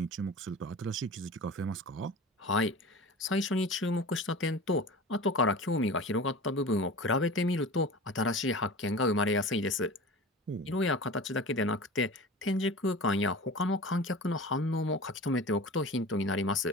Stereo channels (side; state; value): both; normal; correlation 0.35